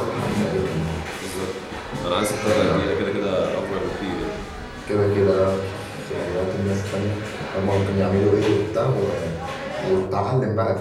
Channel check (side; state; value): both; identical; correlation 1.00